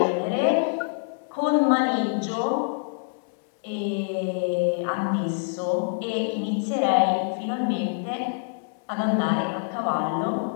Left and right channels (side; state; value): right; silent; digital silence